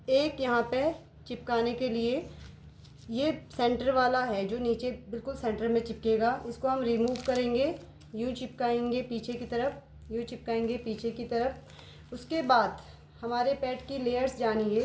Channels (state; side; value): identical; both; correlation 1.00